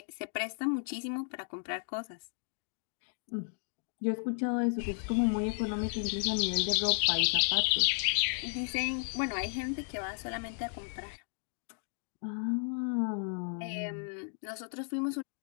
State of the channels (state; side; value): silent; right; 55 dB below the other